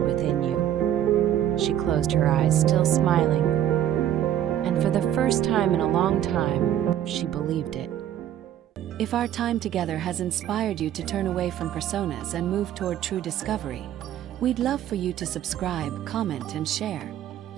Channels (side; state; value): left; quieter; 11.2 dB